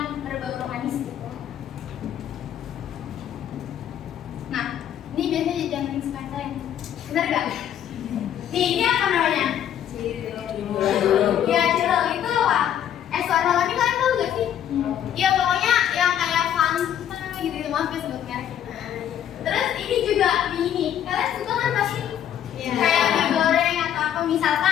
berbau manis gitu. Nah ini biasanya jumping spine, bener nggak? Nih ini apa namanya? Ya cilok itu apa? Es warna ini kalian tahu gak sih? Iya pokoknya yang kayak Fanta gitu, maaf ya sebut merek. Terus ini juga mie ini, kalian suka kan pasti? Kayak mie goreng atau apa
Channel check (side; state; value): right; quieter; 10.2 dB